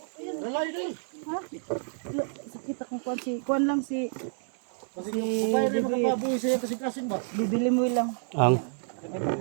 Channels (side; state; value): left; silent; 59 dB below the other